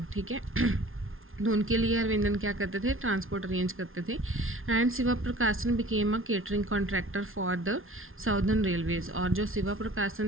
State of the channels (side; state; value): left; late; 0.60 ms